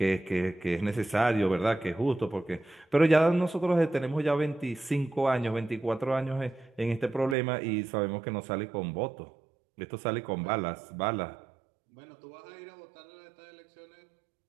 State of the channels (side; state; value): left; drops out; at 7.4 s